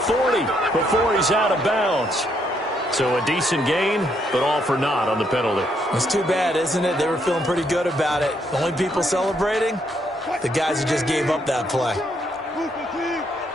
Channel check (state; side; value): normal; both; correlation 0.74